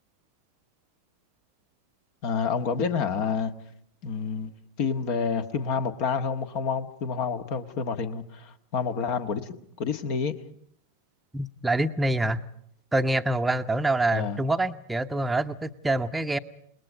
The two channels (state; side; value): normal; both; correlation 0.46